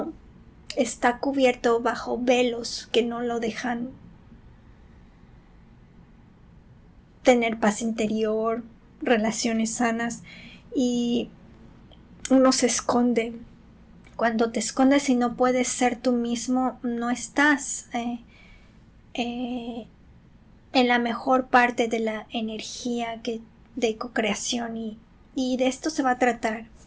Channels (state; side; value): identical; both; correlation 1.00